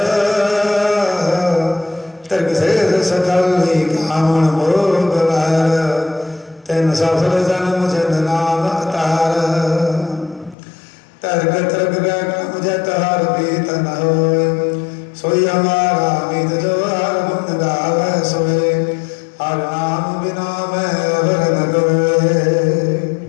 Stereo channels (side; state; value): right; drops out; at 10.6 s